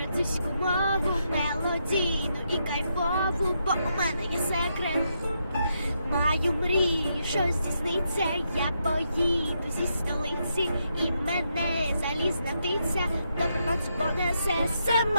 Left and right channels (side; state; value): both; inverted; correlation -0.80